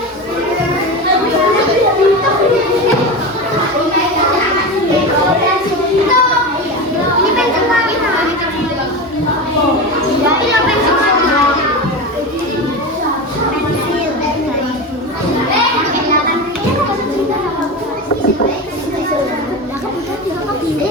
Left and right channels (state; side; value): normal; both; correlation 0.23